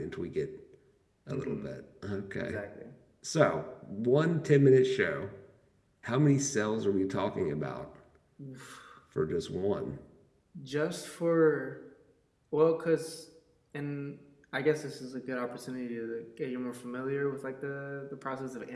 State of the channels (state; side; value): identical; both; correlation 1.00